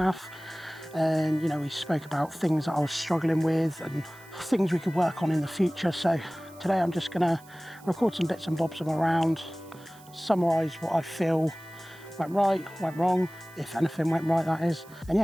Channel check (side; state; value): right; noise; hiss, 25 dB below the sound